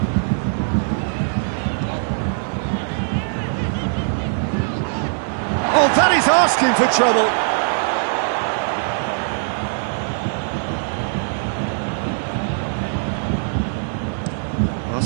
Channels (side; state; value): left; silent; digital silence